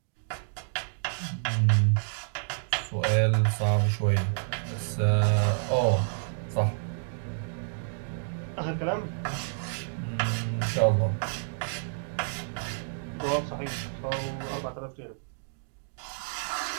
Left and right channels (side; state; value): left; silent; digital silence